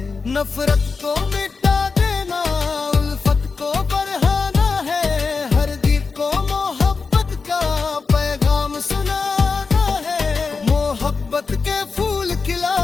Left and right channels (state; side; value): quieter; right; 4.7 dB